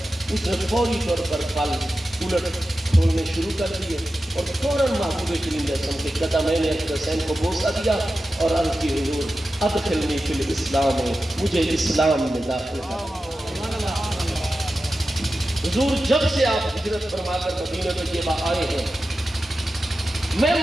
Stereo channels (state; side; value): normal; both; correlation 0.93